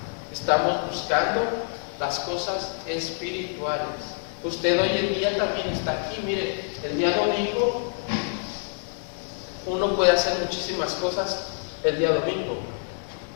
Estamos buscando las cosas espirituales. Usted hoy en día también está aquí. Mire, el día domingo uno puede hacer muchísimas cosas el día domingo.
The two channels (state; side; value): silent; right; 61 dB below the other